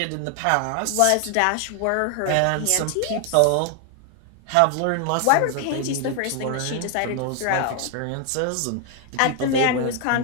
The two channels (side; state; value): both; different; correlation 0.00